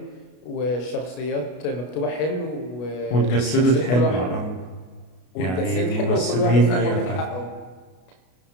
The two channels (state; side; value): late; right; 33 ms